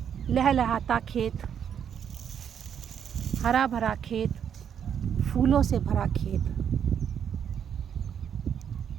लहलहाता खेत, हरा भरा खेत, फूलों से भरा खेत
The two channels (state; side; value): quieter; left; 8.4 dB